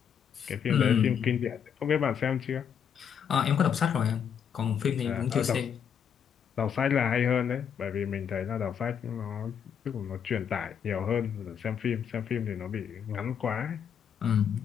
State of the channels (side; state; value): right; quieter; 7.9 dB